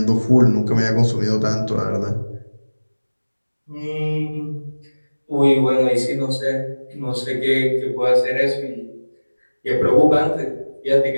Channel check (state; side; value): inverted; both; correlation -1.00